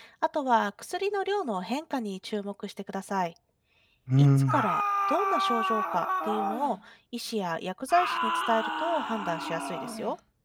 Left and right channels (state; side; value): identical; both; correlation 1.00